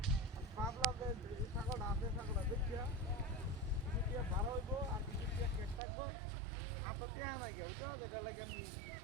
ভাবলাম যে ছাগলটা আছে ছাগলটা দেখিয়া ভালো হইব আর কেক থাকবো আপনার দেয়া নাই গে ওইটা যেটা লাগে আমি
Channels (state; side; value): drops out; left; at 5.8 s